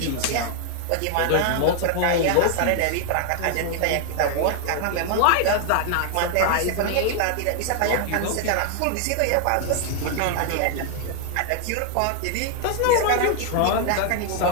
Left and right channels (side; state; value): both; different; correlation 0.00